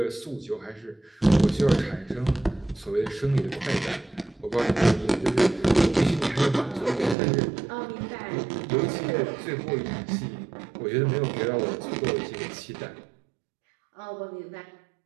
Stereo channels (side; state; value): left; drops out; at 7.2 s